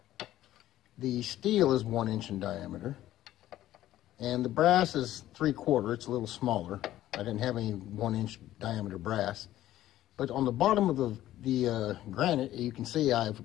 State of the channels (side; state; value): right; quieter; 13.8 dB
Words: The steel is 1 inch in diameter. And the brass is 3/4, it's a little smaller. I didn't have any 1 inch diameter brass. But on the bottom of the granite, you can see I've